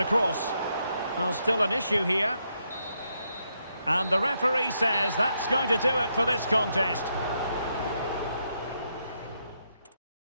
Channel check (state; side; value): inverted; both; correlation -0.79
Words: cross. Well, still an issue here. And the referee says that's going to do it for this contest.